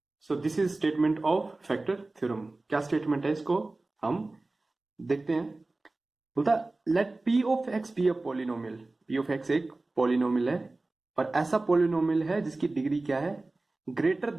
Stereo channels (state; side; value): quieter; left; 3.1 dB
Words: So this is statement of factor theorem. क्या स्टेटमेंट है इसको हम देखते हैं. बोलता let P of x be a polynomial. P of X एक पॉलिनोमियल है और ऐसा पॉलिनोमियल है जिसकी डिग्री क्या है, ग्रेटर